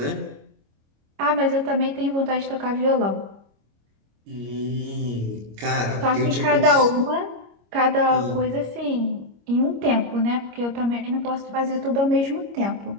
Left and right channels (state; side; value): late; left; 25 ms